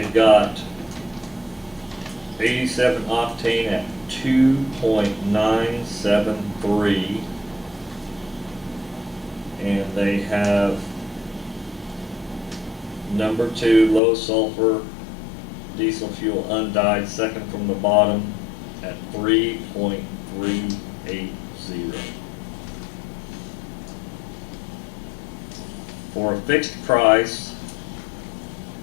got 87 octane at 2.973, and they have number 2 low sulfur diesel fuel undyed, second from the bottom, at 3.380. For a fixed price,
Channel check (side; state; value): right; drops out; at 14.0 s